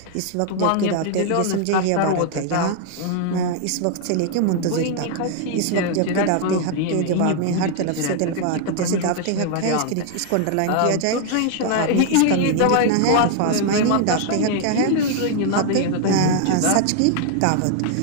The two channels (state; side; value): different; both; correlation 0.00